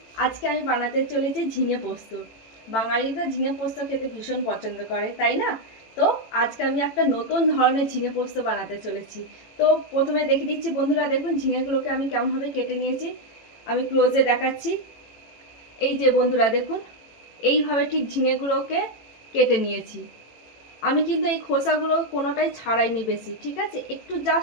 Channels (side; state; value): right; late; 18 ms